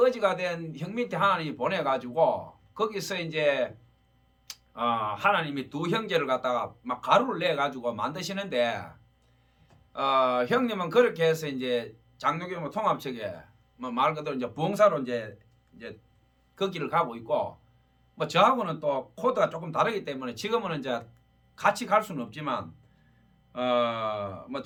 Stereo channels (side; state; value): both; identical; correlation 1.00